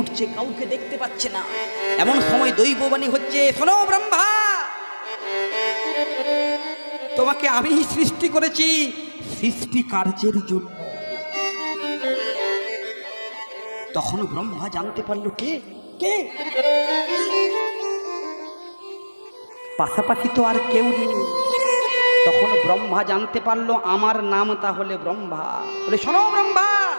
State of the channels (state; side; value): inverted; both; correlation -1.00